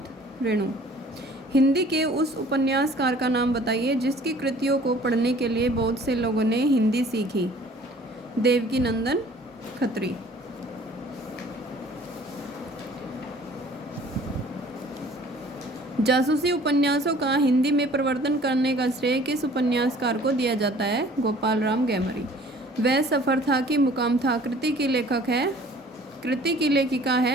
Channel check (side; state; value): both; normal; correlation 0.52